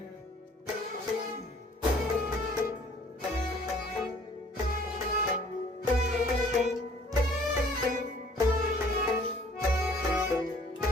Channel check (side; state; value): both; normal; correlation 0.56